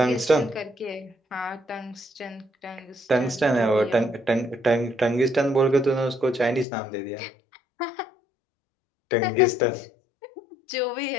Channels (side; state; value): right; drops out; at 6.7 s